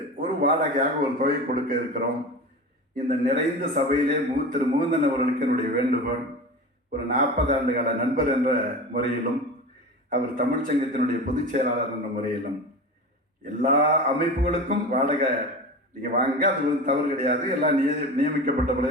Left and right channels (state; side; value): normal; both; correlation 0.30